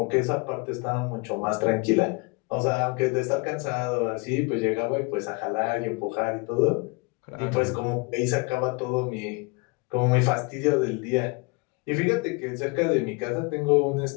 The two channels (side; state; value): right; quieter; 29.1 dB